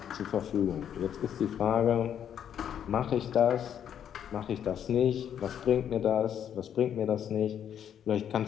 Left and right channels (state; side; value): quieter; right; 9.2 dB